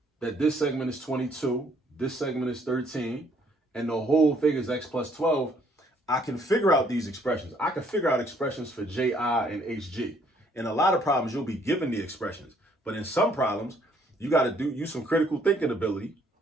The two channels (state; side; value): normal; both; correlation 0.65